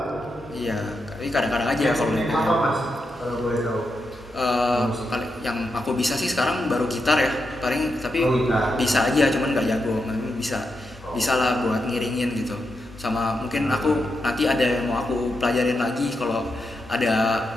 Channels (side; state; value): both; normal; correlation 0.85